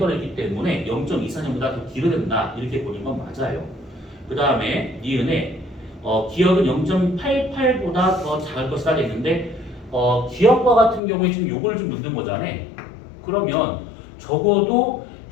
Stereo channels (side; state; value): right; drops out; at 11.0 s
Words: 있기 때문에 0.24년보다 더 길어야 된다 이렇게 보는 건 맞아요. 그 다음에 니은에 기억은 0.88보다 더 작을 것이다 했는데 기억과 같은 경우에 지금 요걸 좀 묻는 거잖아. 그러면 적어도